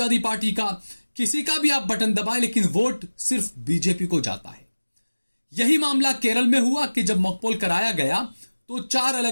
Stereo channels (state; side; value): inverted; both; correlation -1.00